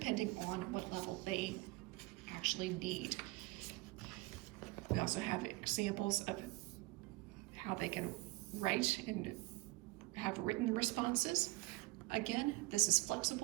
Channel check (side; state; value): left; quieter; 22.4 dB